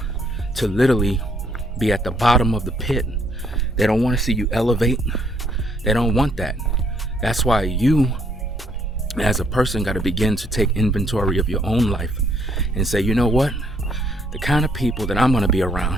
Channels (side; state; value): both; normal; correlation 0.68